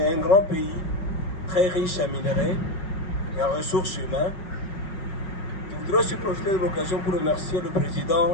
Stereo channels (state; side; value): late; right; 5.4 ms